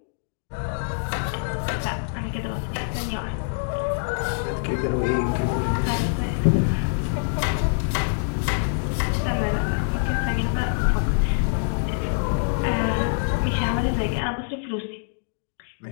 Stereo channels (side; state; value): right; silent; digital silence